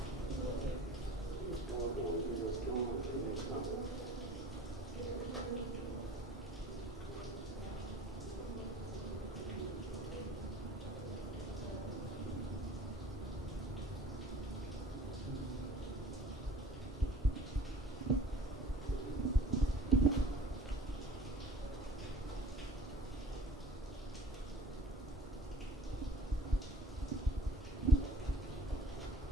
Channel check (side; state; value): both; normal; correlation 0.47